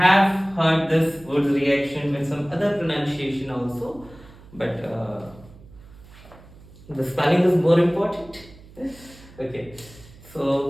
heard this Wood's reaction with some other pronunciation also, but the spelling is more important. Okay,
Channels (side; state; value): right; noise; hum, 22 dB below the sound